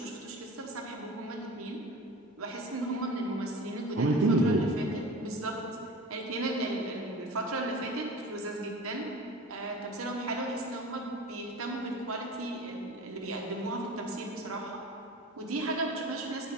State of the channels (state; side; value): normal; both; correlation 0.37